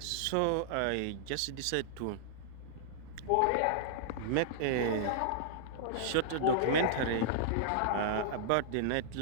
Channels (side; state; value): both; different; correlation -0.01